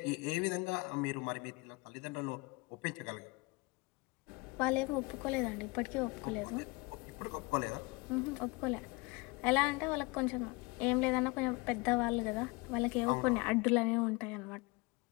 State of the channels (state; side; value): quieter; right; 26.2 dB